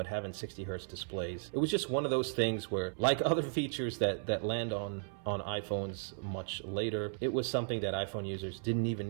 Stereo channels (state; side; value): silent; left; 54 dB below the other